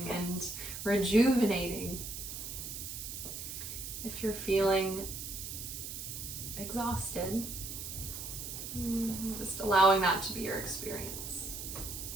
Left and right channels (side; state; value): right; noise; hiss, 7 dB below the sound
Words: and rejuvenating, if you're feeling exhausted, just allowing that to be your experience.